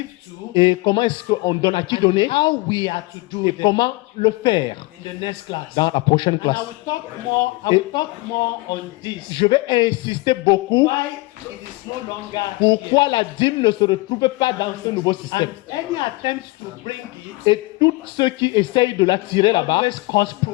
to, et comment est-ce qu'on donne à qui donner how we are to do et them comment le faire in the next class. dans la prochaine And classe. I will talk more on this. Je vais insister beaucoup Why it is no longer pourquoi la dîme ne se retrouve pas dans ce nouveau système. and any attempts to bring it Et tous ceux qui essayent de l'attirer là-bas, always cause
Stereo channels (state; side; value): quieter; right; 23.0 dB